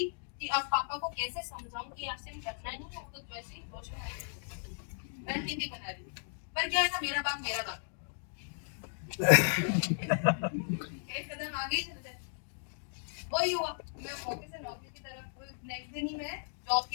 कि अब पापा को कैसे समझाऊं कि आरसीएम करना नहीं है, तो वैसे ही रणनीति बना रही थी। पर क्या है ना, मेरा बाप एक कदम आगे चल गए। वही हुआ, मैं ऑफिस से नौकरी की तरफ, नेक्स्ट दिन ही मैं जॉब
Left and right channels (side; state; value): right; silent; digital silence